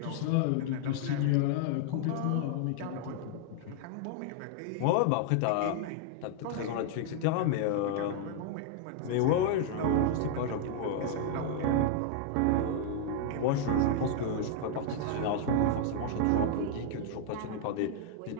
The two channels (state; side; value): different; both; correlation -0.01